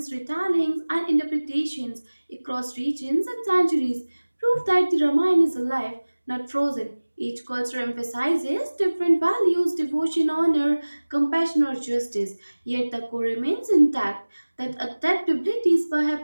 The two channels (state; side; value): inverted; both; correlation -1.00